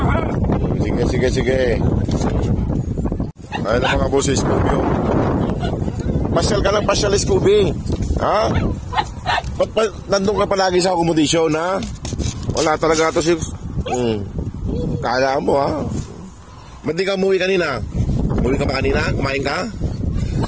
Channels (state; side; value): identical; both; correlation 1.00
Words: Sige. Ayun na mga boss, Scooby, oh. Pasyal ka lang, Scooby. Ha? Ba't nandun ka palagi sa accommodation, ha? Wala talaga ito si... Kala mo, ha? Ba't di ka umuwi kanina? Umuwi ka ba kanina? Kumain ka?